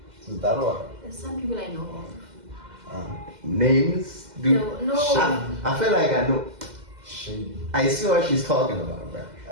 It's that one. There's some people I know of. Names? Dude. No. I feel like I know. Shady. I see what she's talking about, bro.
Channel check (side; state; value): left; late; 2.0 ms